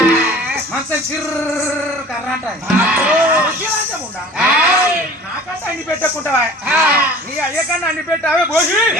మంచం చిర్ర కర్ర అంటాది నాకంటే అండి పెట్టకుంటావా నీ అయ్యకన్నా అండి పెట్టావే పోసి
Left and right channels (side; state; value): both; normal; correlation 0.45